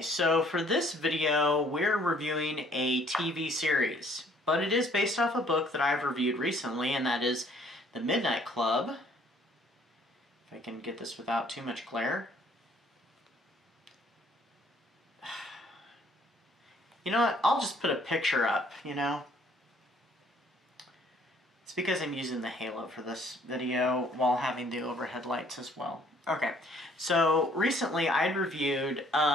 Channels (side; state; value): both; normal; correlation 0.61